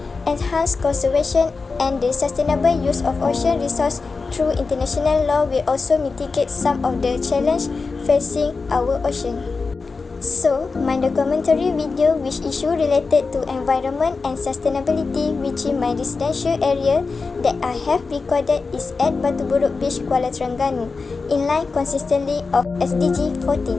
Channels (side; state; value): right; quieter; 4.3 dB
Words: enhance conservation and the sustainable use of ocean resources through international law will also mitigate some of the challenges facing our ocean. So, my documentary video which issue related to environment and sustainability within my residential area that I have recorded is at Burok Beach, Kuala Terengganu, in line consistently of